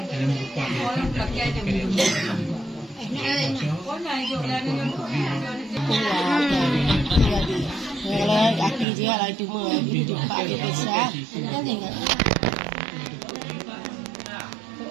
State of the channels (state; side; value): drops out; left; at 8.8 s